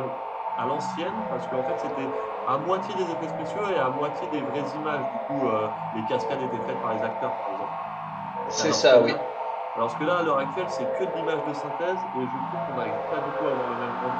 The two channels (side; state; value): both; identical; correlation 1.00